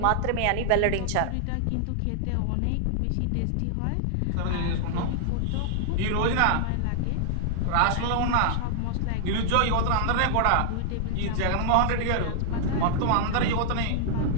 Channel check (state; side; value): different; both; correlation -0.01